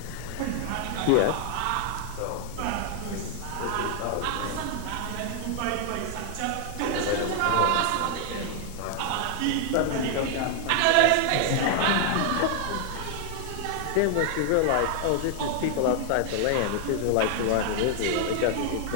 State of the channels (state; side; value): different; both; correlation 0.00